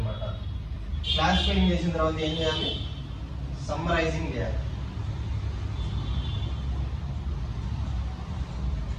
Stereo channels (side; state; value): both; identical; correlation 1.00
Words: క్లాసిఫైయింగ్ చేసిన తర్వాత ఏం చేయాలి? సమ్మరైజింగ్ చేయాలి.